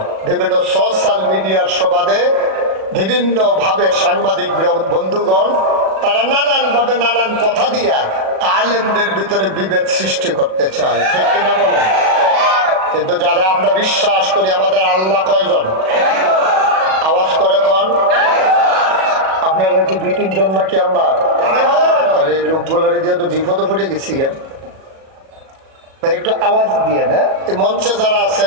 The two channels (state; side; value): late; left; 37 ms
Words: বিভিন্ন সোশ্যাল মিডিয়ার সুবাদে বিভিন্ন ভাবে সাংবাদিক বন্ধুগণ তারা নানান ভাবে নানান কথা দিয়া আলেমদের ভিতরে বিভেদ সৃষ্টি করতে চায়, ঠিক কিনা বলেন? কিন্তু যারা আমরা বিশ্বাস করি আমাদের আল্লাহ কয়জন? আওয়াজ করে কোন? আপনারা কি 2-3 জন নাকি আল্লাহ? আরে লোকগুলারে দিয়ে তো বিপদে পড়ে গেছি। একটু আওয়াজ দিয়ে না, এই মঞ্চে যারা